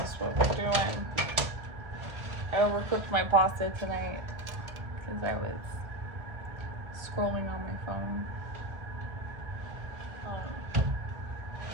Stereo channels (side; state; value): left; late; 1.6 ms